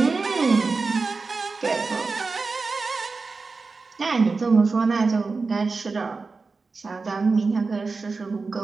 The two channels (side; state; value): left; quieter; 4.2 dB